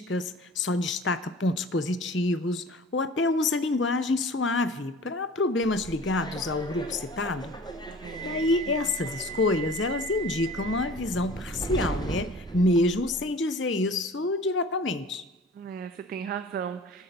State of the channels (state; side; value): normal; both; correlation 0.43